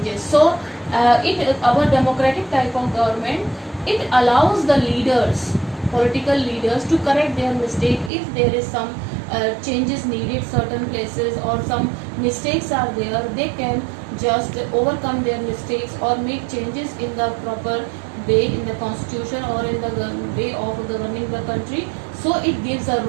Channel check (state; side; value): drops out; left; at 8.1 s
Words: So our democratic type of government, it allows the leaders, political leaders, to correct their mistake if there is some changes needed certain places or some mistakes are there. They can just overcome their mistakes or make changes in the proper way in the constitution or in the way of governing the country. So it gives a